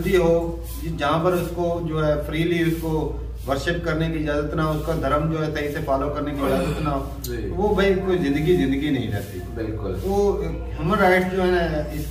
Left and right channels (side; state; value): both; identical; correlation 1.00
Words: हो जहाँ पर उसको जो है फ्रीली उसको वर्शिप करने की इजाजत ना हो, उसका धर्म जो है सही से फॉलो करने की इजाजत ना हो, वो भाई कोई जिंदगी नहीं रहती। बिल्कुल, वो ह्यूमन राइट्स जो है ना